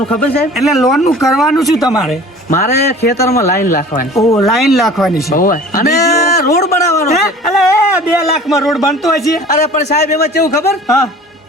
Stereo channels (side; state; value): both; normal; correlation 0.45